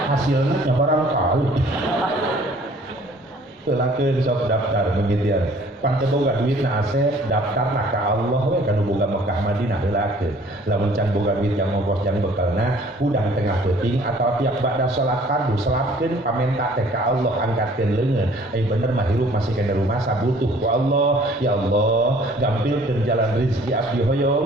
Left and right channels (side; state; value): both; normal; correlation 0.55